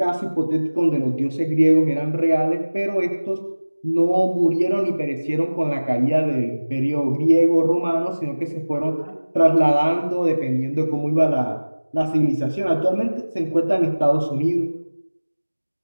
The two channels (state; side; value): inverted; both; correlation -1.00